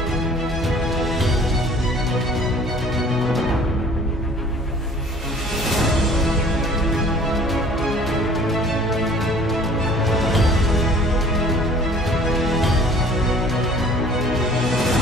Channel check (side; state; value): both; normal; correlation 0.50